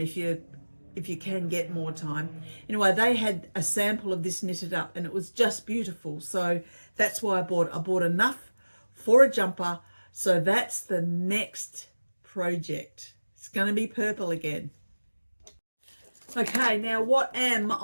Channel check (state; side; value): inverted; both; correlation -1.00